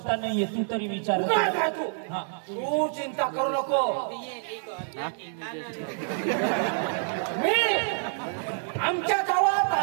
नाहीये तू तरी विचार तू चिंता करू नको मी आमच्या गावात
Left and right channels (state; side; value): silent; left; digital silence